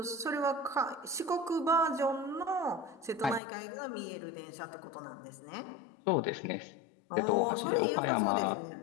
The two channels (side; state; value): right; drops out; at 3.4 s